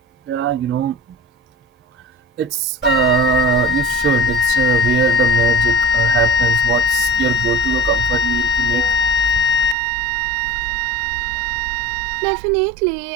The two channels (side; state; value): left; drops out; at 9.8 s